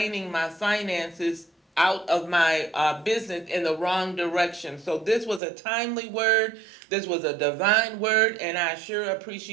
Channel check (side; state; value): left; drops out; at 5.4 s